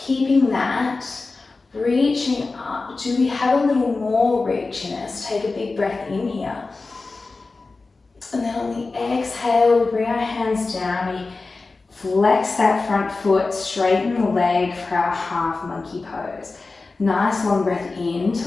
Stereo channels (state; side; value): quieter; right; 3.7 dB